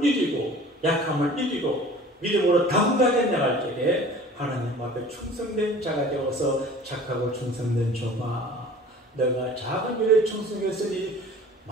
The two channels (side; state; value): both; normal; correlation 0.45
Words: 이기고 약함을 이기고 믿음으로 당당하게 나갈 때에 하나님 앞에 충성된 자가 되어서 착하고 충성된 종아, 너가 작은 일에 충성했으니